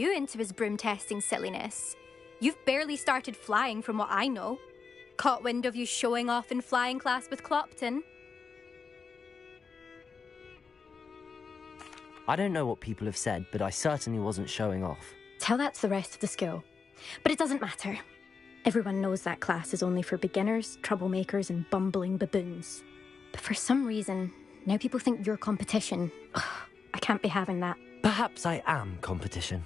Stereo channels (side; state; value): right; quieter; 5.3 dB